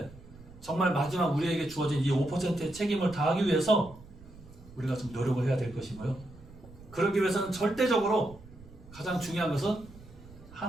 정말 마지막 우리에게 주어진 이 5%의 책임을 다하기 위해서 우리가 좀 노력을 해야 될 것이고요. 그러기 위해서는 절대적으로 가장 중요한 것은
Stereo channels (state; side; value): noise; right; rumble, 20 dB below the sound